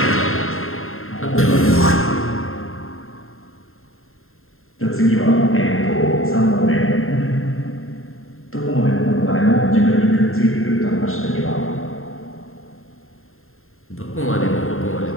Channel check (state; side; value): late; right; 0.61 ms